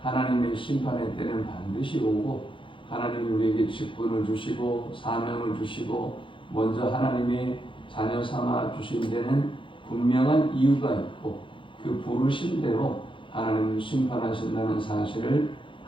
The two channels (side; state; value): right; late; 0.25 ms